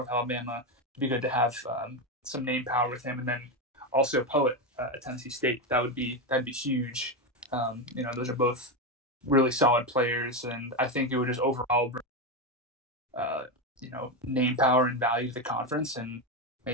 Alabama, it'd be good to have some name power with him, and then also Poet at Tennessee State. That'd be huge. Those are both really solid players, and I think it would just overall bring name power and value to the conference, and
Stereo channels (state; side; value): normal; both; correlation 0.12